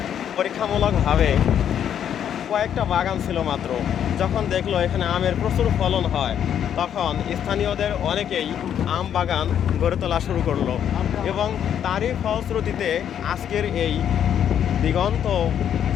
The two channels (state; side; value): quieter; right; 9.3 dB